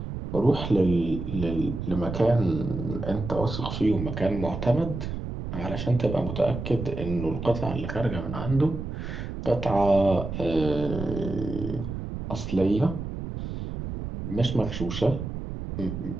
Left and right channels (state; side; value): noise; right; rumble, 6 dB below the sound